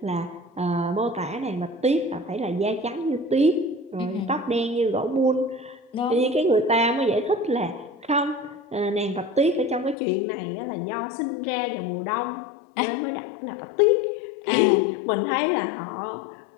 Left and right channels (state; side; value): drops out; right; at 10.0 s